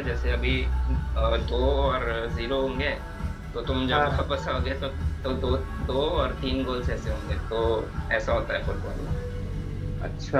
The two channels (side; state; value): both; identical; correlation 1.00